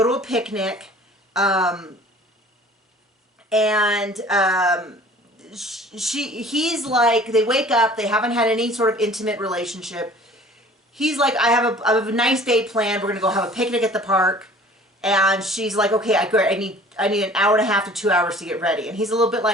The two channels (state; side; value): normal; both; correlation 0.48